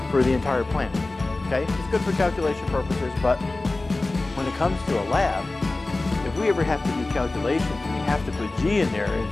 for the entire planet. Okay, it's good for calculation purposes, but when it comes to a lab, if we ever have to do calculations and we have to put g in there, and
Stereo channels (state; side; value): quieter; right; 3.1 dB